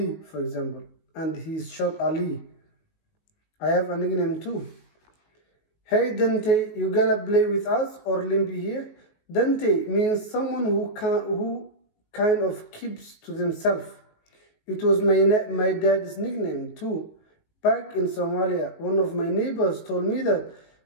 for example, and he's short Ali. I have a nickname too. Hey Dante, you gonna play with us or Limpy here? Dante means someone who kind of keeps to themselves. It was my dad's nickname too. Back in Somalia, one of my neighbors told me that,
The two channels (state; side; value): late; right; 19 ms